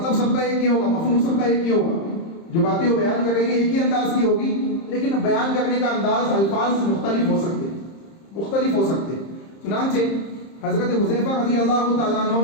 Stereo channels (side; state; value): right; late; 30 ms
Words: سب کا ایک ہی ہوگا، مفہوم سب کا ایک ہی ہوگا۔ جو باتیں وہ بیان کریں گے ایک ہی انداز کی ہوگی، لیکن بیان کرنے کا انداز، الفاظ مختلف ہو سکتے ہیں، مختلف ہو سکتے ہیں۔ چنانچہ حضرت حذیفہ رضی اللہ تعالیٰ